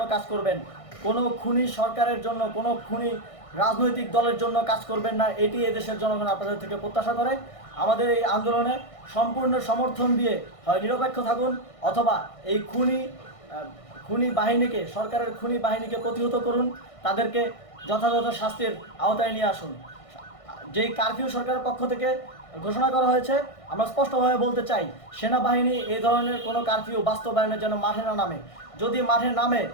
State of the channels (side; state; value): right; late; 1.6 ms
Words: কাজ করবেন, কোনো খুনি সরকারের জন্য, কোনো খুনি রাজনৈতিক দলের জন্য কাজ করবেন না। এটি এদেশের জনগণ আপনাদের থেকে প্রত্যাশা করে। আমাদের এই আন্দোলনে সম্পূর্ণ সমর্থন দিয়ে হয় নিরপেক্ষ থাকুন, অথবা এই খুনি বাহিনীকে, সরকারের খুনি বাহিনীকে প্রতিহত করুন, তাদেরকে যথাযথ শাস্তির আওতায় নিয়ে আসুন। যেই কারফিউ সরকারের পক্ষ থেকে ঘোষণা করা হয়েছে, আমরা স্পষ্টভাবে বলতে চাই সেনাবাহিনী এই ধরনের কোনো কারফিউ বাস্তবায়নের জন্য মাঠে না নামে। যদি মাঠে নামে